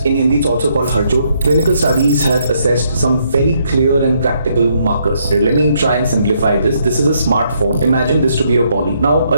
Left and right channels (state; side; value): inverted; both; correlation -0.73